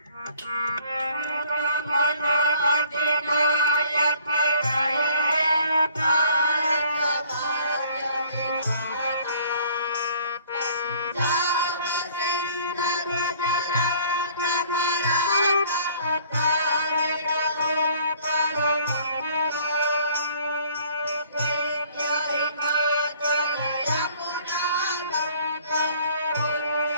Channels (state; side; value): inverted; both; correlation -0.55